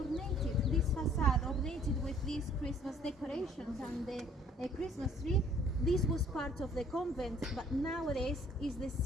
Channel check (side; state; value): both; normal; correlation 0.58